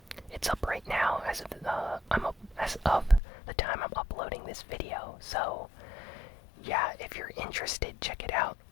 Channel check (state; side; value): drops out; right; at 3.2 s